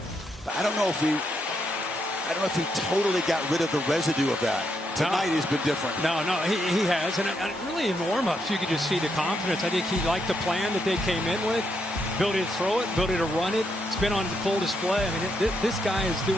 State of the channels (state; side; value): normal; both; correlation 0.79